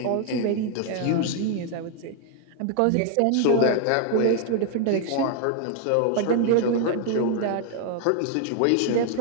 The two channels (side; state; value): both; different; correlation 0.01